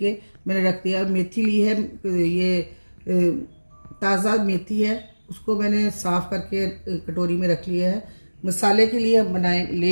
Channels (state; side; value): inverted; both; correlation -1.00